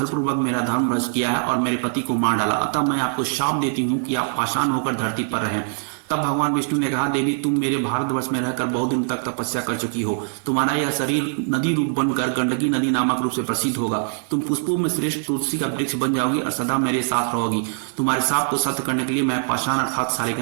मेरा धर्म भ्रष्ट किया है और मेरे पति को मार डाला, अतः मैं आपको शाप देती हूँ कि आप पाषाण होकर धरती पर रहें। तब भगवान विष्णु ने कहा, देवी तुम मेरे भारतवर्ष में रहकर बहुत दिन तक तपस्या कर चुकी हो। तुम्हारा यह शरीर नदी रूप बनकर गंडकी नदी नामक रूप से प्रसिद्ध होगा। तुम पुष्पों में श्रेष्ठ तुलसी का वृक्ष बन जाओगी और सदा मेरे साथ रहोगी। तुम्हारे साप को सत्य करने के लिए मैं पाषाण अर्थात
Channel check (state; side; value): silent; left; 55 dB below the other